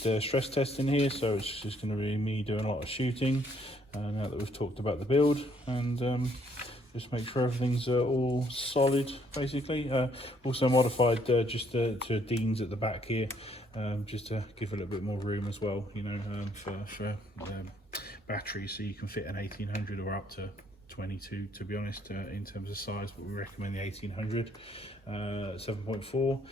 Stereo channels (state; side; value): normal; both; correlation 0.67